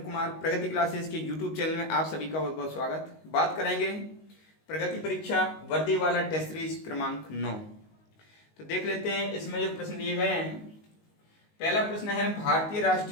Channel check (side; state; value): right; late; 19 ms